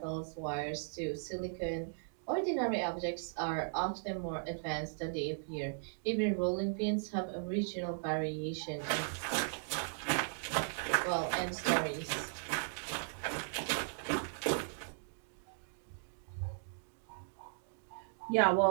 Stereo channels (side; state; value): left; silent; digital silence